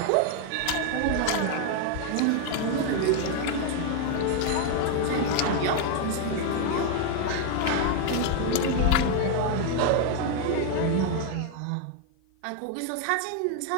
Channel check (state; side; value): different; both; correlation 0.01